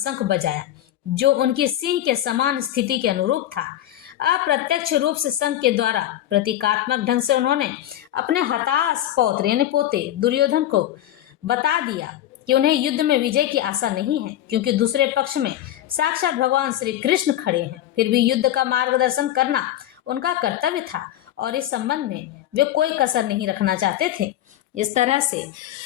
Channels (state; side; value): quieter; right; 12.7 dB